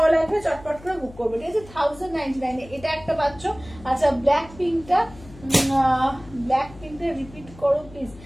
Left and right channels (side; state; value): left; noise; hum, 19 dB below the sound